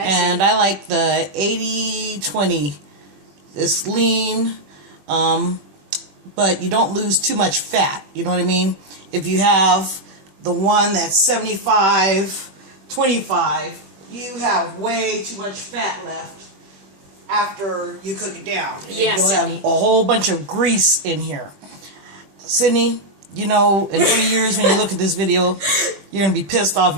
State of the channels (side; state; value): left; late; 20 ms